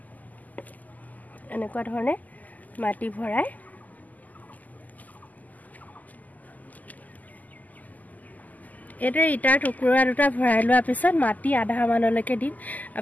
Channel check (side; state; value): right; late; 0.080 ms